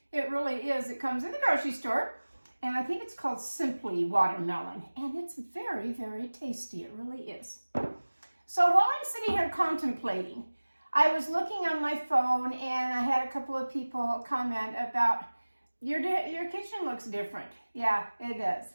It really is. It comes in the grocery store, and I think it's called Simply Watermelon, and it's very, very tasty. It really is. So while I'm sitting here contemplating, I was looking on my phone, and I had a couple of people comment about, your kitchen looks different. Yeah, it does.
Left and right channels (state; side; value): inverted; both; correlation -1.00